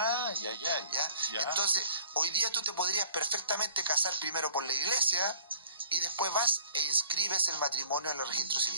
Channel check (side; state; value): both; inverted; correlation -0.53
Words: Ya. Entonces, hoy día tú te podrías perfectamente casar primero por la iglesia y después vas e inscribes el matrimonio en el registro